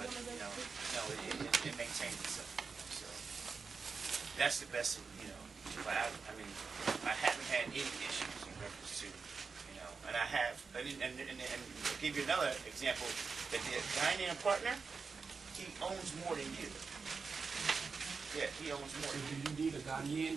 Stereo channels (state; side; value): quieter; left; 4.9 dB